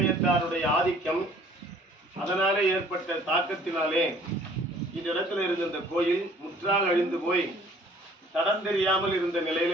ஆதிக்கம், அதனாலே ஏற்பட்ட தாக்கத்தினாலே இந்த இடத்துல இருந்த இந்த கோயில் முற்றாக அழிந்து போய் தடம் தெரியாமல் இருந்த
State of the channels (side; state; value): both; normal; correlation 0.55